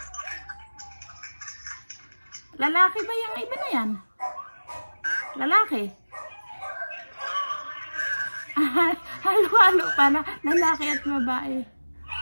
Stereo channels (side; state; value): both; inverted; correlation -1.00